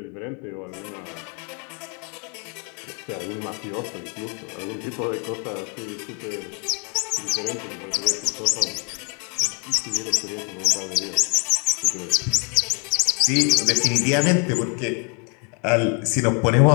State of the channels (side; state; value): right; quieter; 37.2 dB